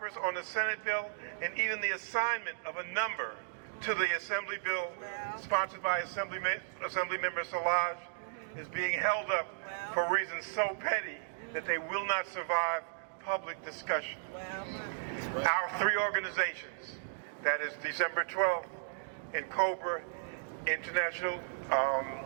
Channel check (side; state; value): left; silent; digital silence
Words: on the Senate bill and even the assignment of a number to the Assembly bill sponsored by Assemblymember Solage is being held up for reasons so petty that they will not survive public discussion. Our 3 organizations, that is December 12th and COBRA, International